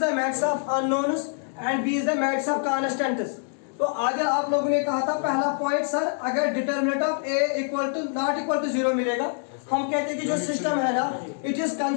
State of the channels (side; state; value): right; silent; 56 dB below the other